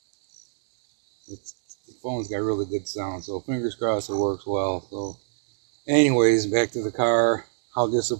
The phone's got really good sound, so fingers crossed it works well. So anyways, back to the car. How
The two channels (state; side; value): silent; left; digital silence